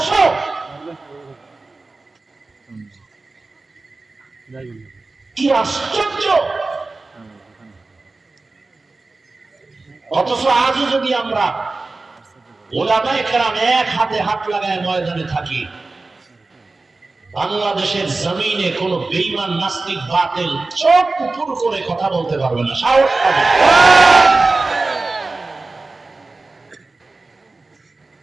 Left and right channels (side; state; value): left; quieter; 3.5 dB